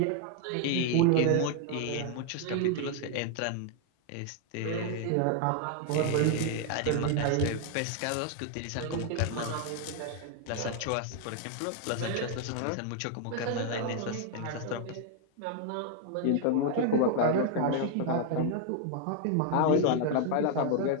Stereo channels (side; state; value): both; different; correlation 0.00